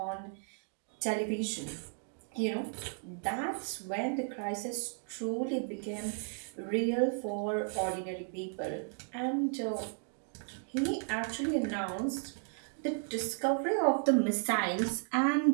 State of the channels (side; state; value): left; silent; 55 dB below the other